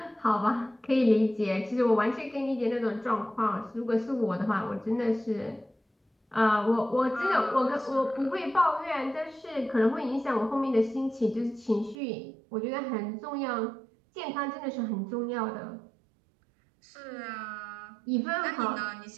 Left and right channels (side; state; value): left; drops out; at 12.0 s